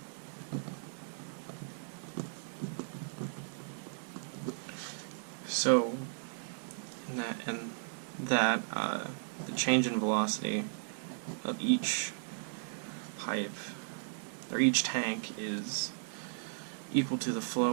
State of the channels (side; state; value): left; silent; 54 dB below the other